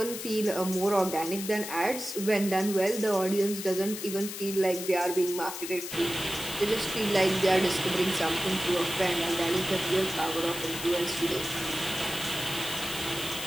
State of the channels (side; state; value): left; noise; hiss, 8 dB below the sound